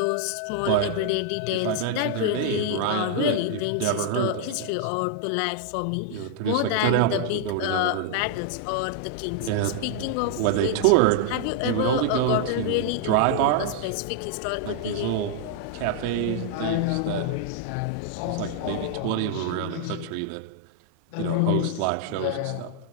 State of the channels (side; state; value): both; different; correlation -0.01